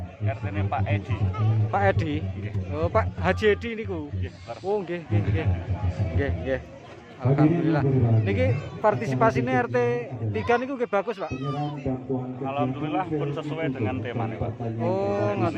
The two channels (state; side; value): identical; both; correlation 1.00